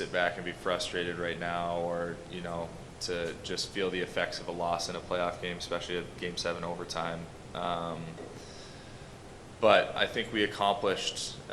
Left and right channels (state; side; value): identical; both; correlation 1.00